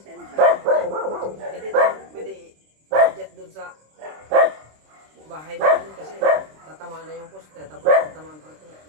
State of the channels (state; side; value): late; left; 26 ms